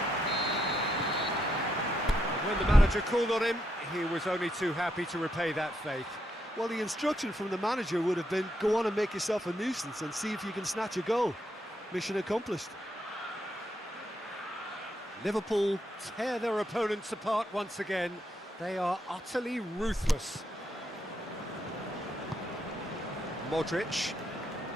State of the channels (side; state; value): both; normal; correlation 0.79